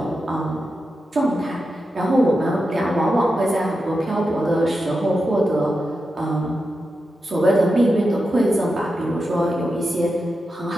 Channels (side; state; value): both; normal; correlation 0.89